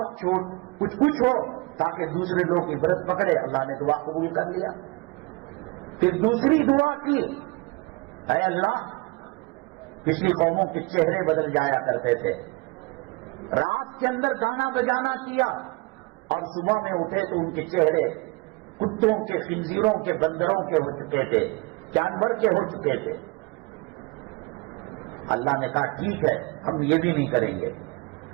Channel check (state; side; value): quieter; left; 25.9 dB